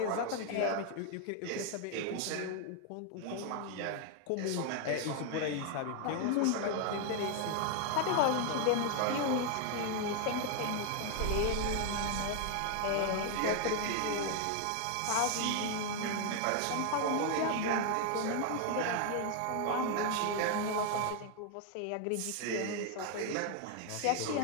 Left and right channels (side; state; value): both; different; correlation 0.00